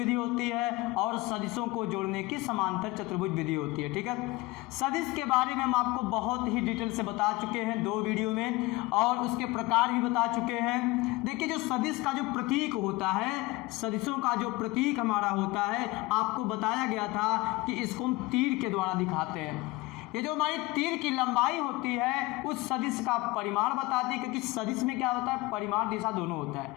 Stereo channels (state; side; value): quieter; right; 20.9 dB